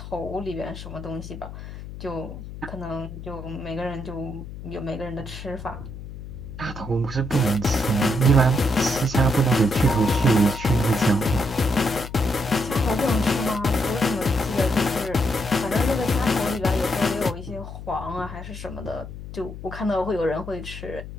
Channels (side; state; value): left; noise; hum, 11 dB below the sound